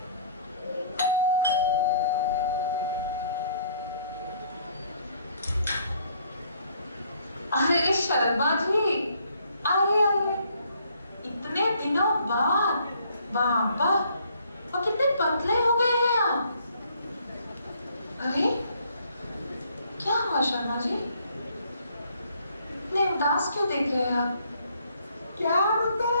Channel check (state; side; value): inverted; both; correlation -0.63